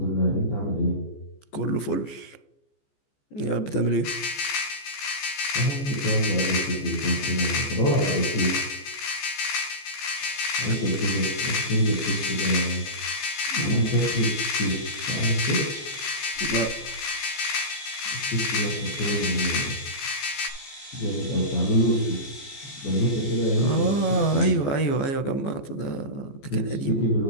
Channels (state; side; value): late; right; 14 ms